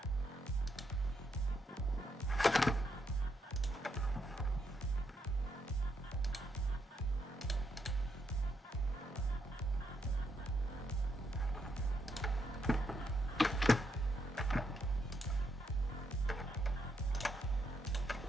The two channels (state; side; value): normal; both; correlation 0.78